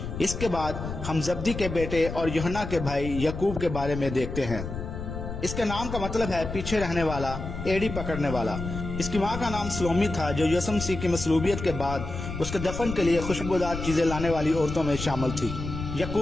اس کے بعد ہم زبدی کے بیٹے اور یوحنا کے بھائی یعقوب کے بارے میں دیکھتے ہیں۔ اس کے نام کا مطلب ہے پیچھے رہنے والا، ایڑی پکڑنے والا۔ اس کی ماں کا نام سلومی تھا جو یسوع مسیح کی مصلوبیت کے بعد اس کے دفن کے لیے خوشبودار چیزیں لانے والی عورتوں میں شامل تھی۔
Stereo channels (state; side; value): noise; left; rumble, 7 dB below the sound